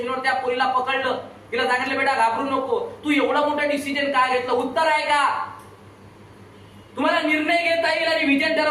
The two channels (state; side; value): identical; both; correlation 1.00